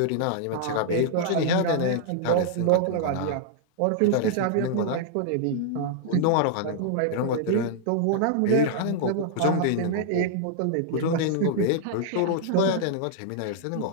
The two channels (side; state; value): both; different; correlation -0.01